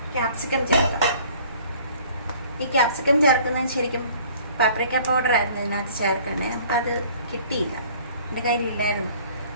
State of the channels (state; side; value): inverted; both; correlation -0.53